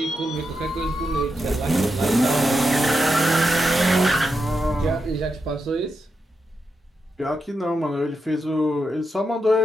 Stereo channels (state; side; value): normal; both; correlation 0.86